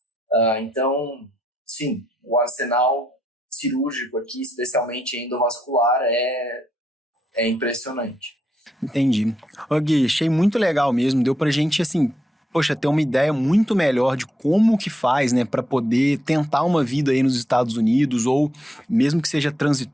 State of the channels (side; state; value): both; normal; correlation 0.79